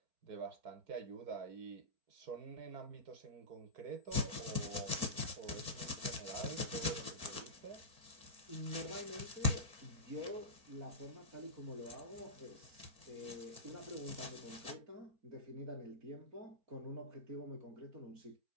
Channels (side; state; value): left; late; 4.4 ms